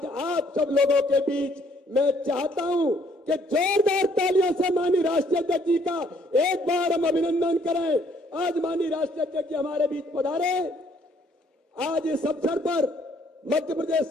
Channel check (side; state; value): both; normal; correlation 0.65